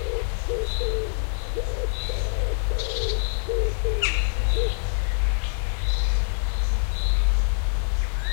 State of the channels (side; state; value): right; silent; digital silence